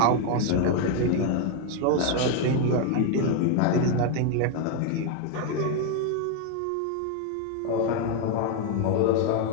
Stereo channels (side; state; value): both; different; correlation 0.01